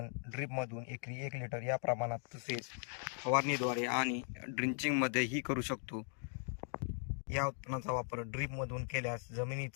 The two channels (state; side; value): silent; right; 52 dB below the other